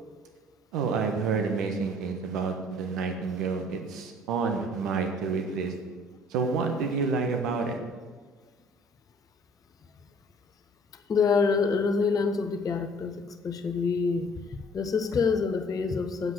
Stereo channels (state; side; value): normal; both; correlation 0.54